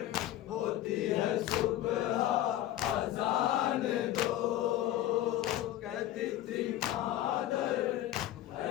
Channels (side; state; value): right; quieter; 13.5 dB